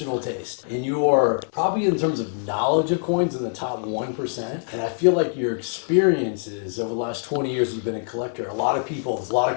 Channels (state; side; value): silent; right; digital silence